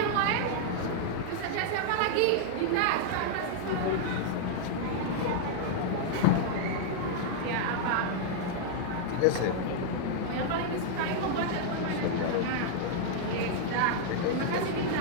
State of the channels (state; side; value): different; both; correlation -0.01